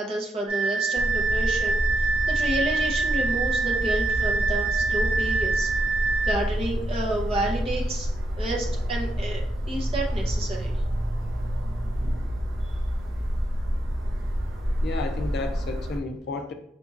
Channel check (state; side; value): normal; both; correlation 0.83